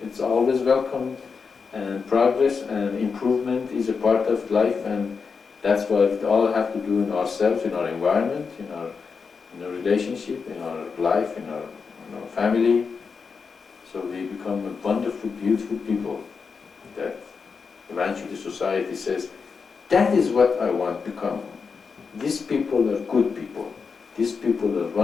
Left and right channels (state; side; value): quieter; right; 5.3 dB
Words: it's always welcome. And progress and improvement is a part of life, and that's what we all have to do in ourselves, in our environment, in our relationship, in our life, in our family. So we become a wonderful, beautiful people that eventually society says, that is what I want to become. These people are good people. These people are